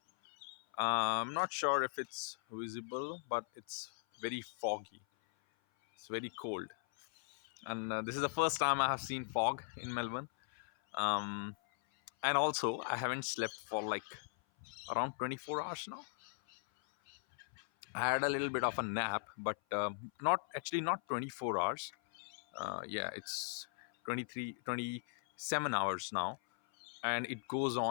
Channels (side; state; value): right; silent; 52 dB below the other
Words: I'm not sure if it's visible, but it's very foggy. It's very cold. And this is the first time I have seen fog in Melbourne. Um, and also, I haven't slept for like around 24 hours now. I had a little bit of a nap, but not 24 hours. Yeah, it's 23, 27 hours now. And it goes